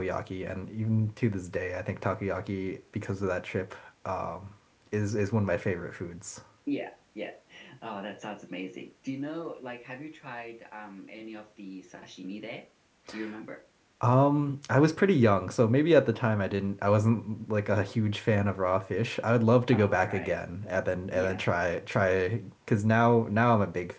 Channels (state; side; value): identical; both; correlation 1.00